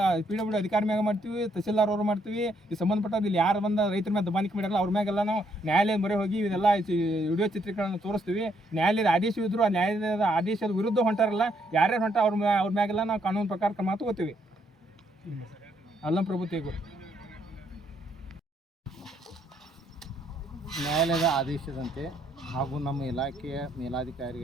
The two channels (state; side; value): normal; both; correlation 0.72